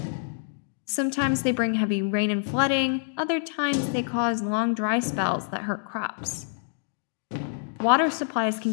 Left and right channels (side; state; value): right; silent; digital silence